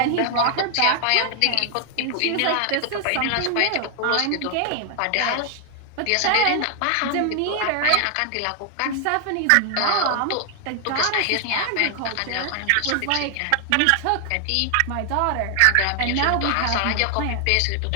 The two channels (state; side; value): different; both; correlation 0.00